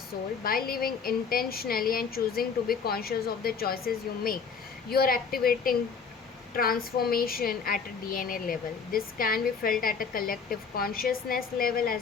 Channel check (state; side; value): quieter; right; 5.8 dB